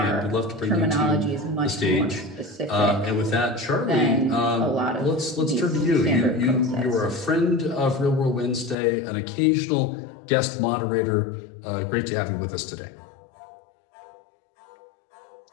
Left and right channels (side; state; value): right; drops out; at 8.8 s